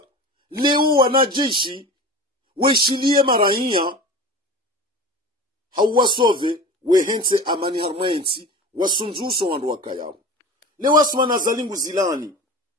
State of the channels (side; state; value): both; normal; correlation 0.33